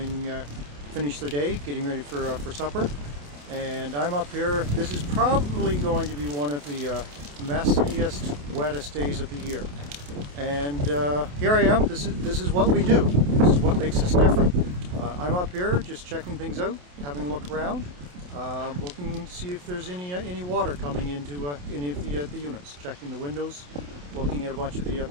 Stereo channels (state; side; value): late; left; 28 ms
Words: finished their day, getting ready for supper. And I'm up here. This is probably going to be one of the messiest, wettest days of the year. And here I am. This is what we do. This is what makes us different. I'm up here just checking things out, having a look around, looking to see if there's any water coming into any of the units. Checking the windows, looking at a bunch of the